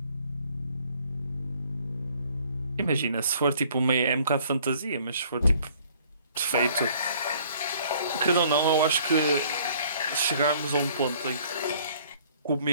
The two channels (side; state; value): both; inverted; correlation -0.58